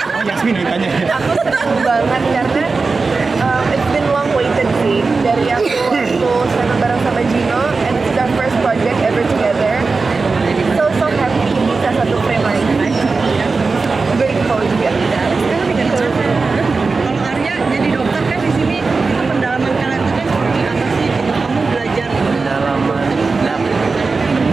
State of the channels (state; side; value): quieter; left; 4.2 dB